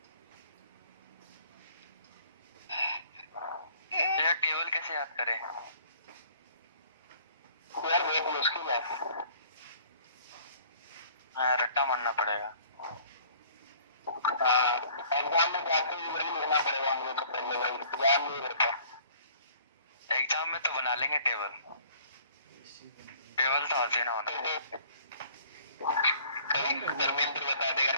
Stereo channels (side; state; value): both; inverted; correlation -0.53